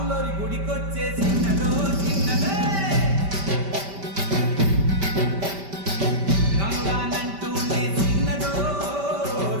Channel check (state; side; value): late; left; 5.1 ms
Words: గుడికొచ్చే చిన్నదో చిన్నదే. రాను రానంటూనే చిన్నదో